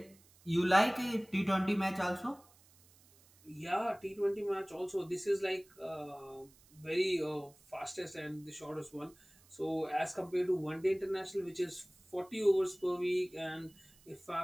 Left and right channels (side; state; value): right; noise; hiss, 28 dB below the sound